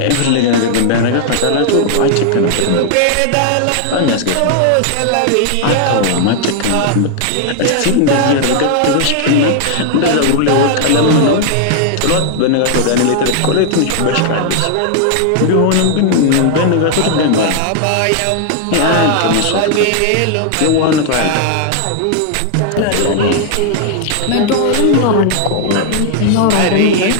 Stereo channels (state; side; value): different; both; correlation 0.00